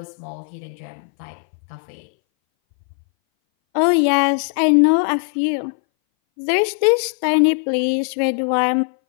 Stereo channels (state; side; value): silent; right; 61 dB below the other